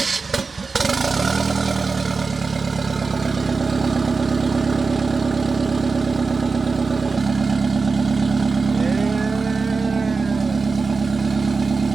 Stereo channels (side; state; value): left; quieter; 4.4 dB